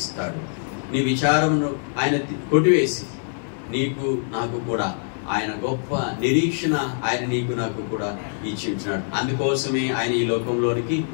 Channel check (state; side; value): silent; right; 63 dB below the other